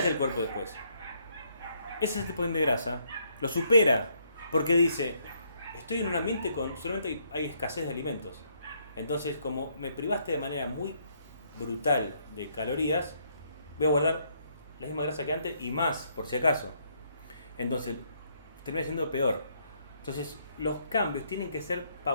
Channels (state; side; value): inverted; both; correlation -0.71